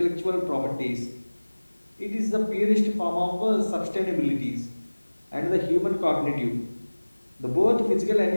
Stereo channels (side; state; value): both; inverted; correlation -1.00